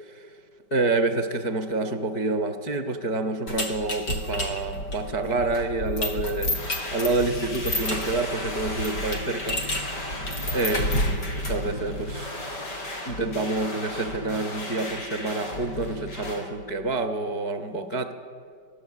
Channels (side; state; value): right; late; 5.2 ms